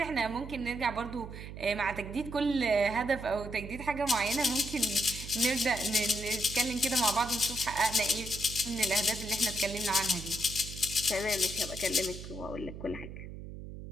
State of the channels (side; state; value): right; noise; hum, 11 dB below the sound